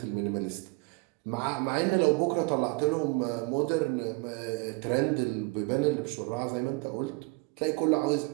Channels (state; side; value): quieter; left; 27.8 dB